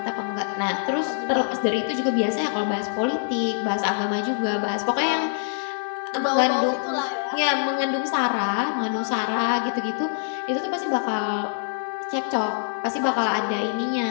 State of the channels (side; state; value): right; silent; digital silence